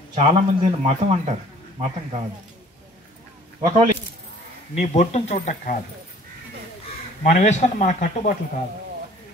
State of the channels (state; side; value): normal; both; correlation 0.53